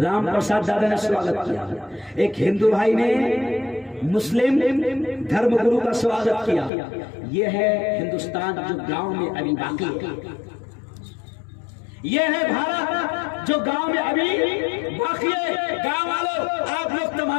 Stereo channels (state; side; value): drops out; right; at 6.7 s